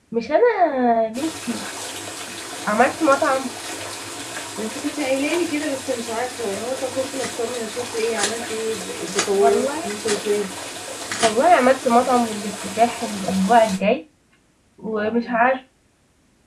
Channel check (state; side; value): identical; both; correlation 1.00